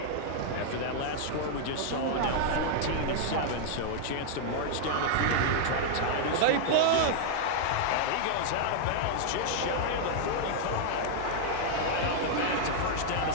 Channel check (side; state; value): both; different; correlation -0.01